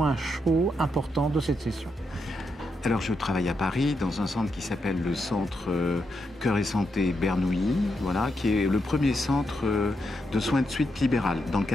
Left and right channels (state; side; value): normal; both; correlation 0.83